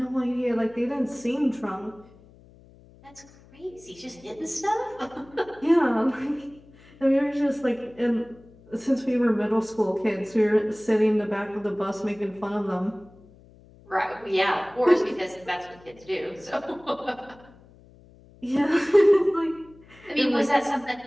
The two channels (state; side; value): noise; left; hum, 25 dB below the sound